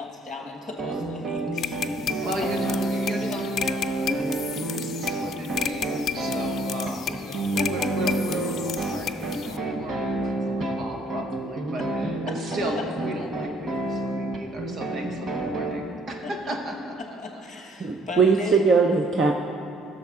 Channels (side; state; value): both; normal; correlation 0.62